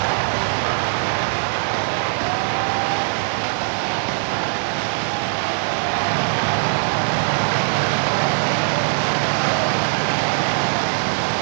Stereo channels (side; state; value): left; silent; 65 dB below the other